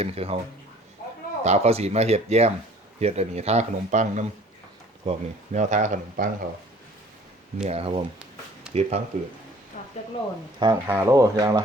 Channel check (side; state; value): both; normal; correlation 0.52